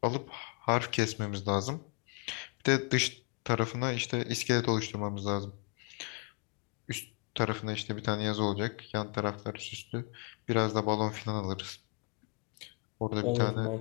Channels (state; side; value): quieter; right; 35.1 dB